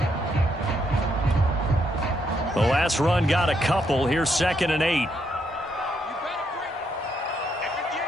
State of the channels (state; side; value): normal; both; correlation 0.76